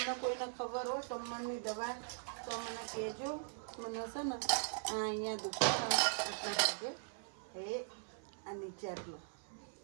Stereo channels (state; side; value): silent; left; 51 dB below the other